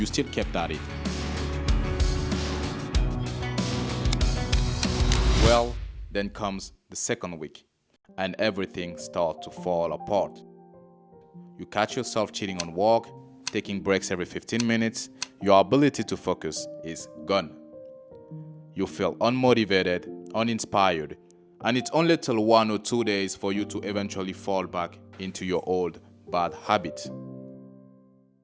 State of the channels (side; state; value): both; identical; correlation 1.00